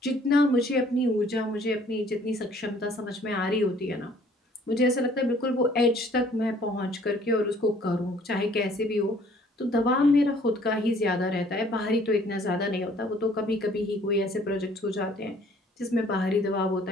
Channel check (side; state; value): both; normal; correlation 0.58